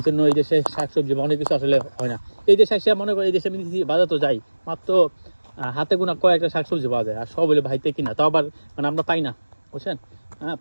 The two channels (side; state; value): both; inverted; correlation -1.00